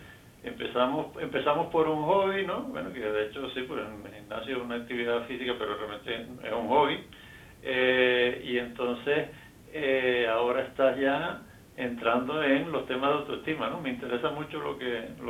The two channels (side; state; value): both; identical; correlation 1.00